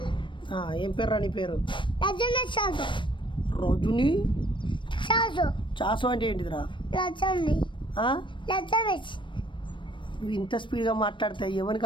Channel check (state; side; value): late; right; 0.24 ms